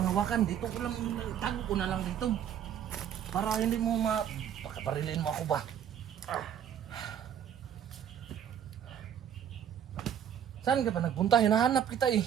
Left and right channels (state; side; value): quieter; left; 9.3 dB